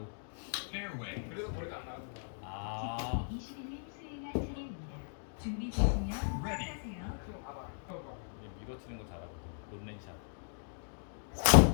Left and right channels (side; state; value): right; silent; digital silence